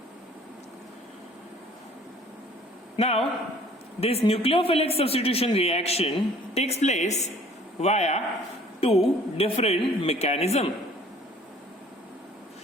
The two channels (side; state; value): both; normal; correlation 0.54